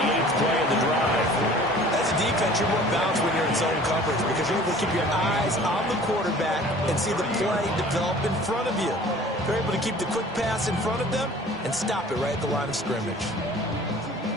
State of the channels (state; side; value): normal; both; correlation 0.48